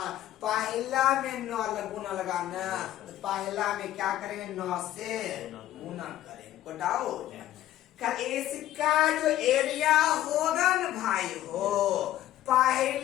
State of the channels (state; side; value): quieter; right; 13.4 dB